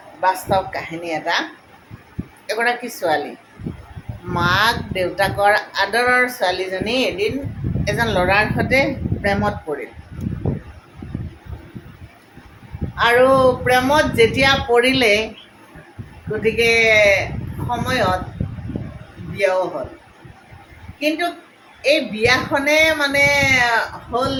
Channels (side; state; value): both; identical; correlation 1.00